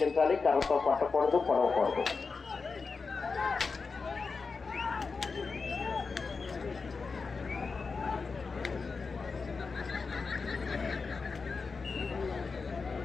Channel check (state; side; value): quieter; right; 4.6 dB